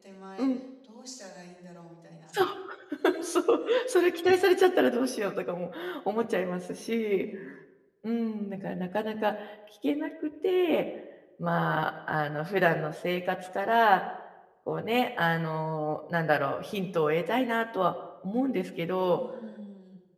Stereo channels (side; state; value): both; identical; correlation 1.00